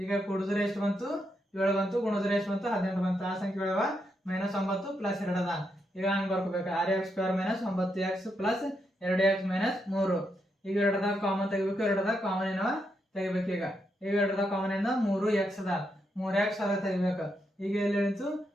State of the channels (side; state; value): both; normal; correlation 0.81